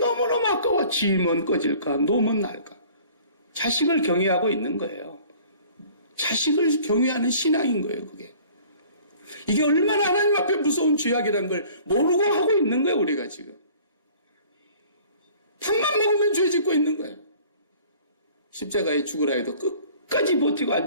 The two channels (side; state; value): both; inverted; correlation -0.50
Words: 아까워. 지면 꺼질까? 놓으면 날까? 자식을 경외하고 있는 거예요. 자식을 경외하는 신앙인 거예요, 그게. 이게 얼마나 하나님 앞에 무서운 죄악이라는 걸 모르고 하고 있는 거예요, 우리가 지금. 밥만 먹으면 죄 짓고 있는 거예요. 십자가에 죽으라 해도 끝까지 버티고 안